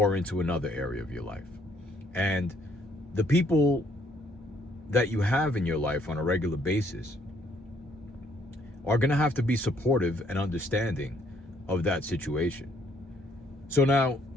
into another area of your life. And the people that you have in your life on a regular basis are going to have to be supportive and understanding of that situation. So now,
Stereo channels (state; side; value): normal; both; correlation 0.67